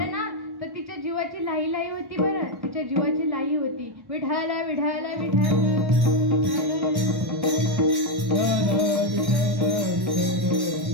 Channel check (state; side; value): late; left; 1.1 ms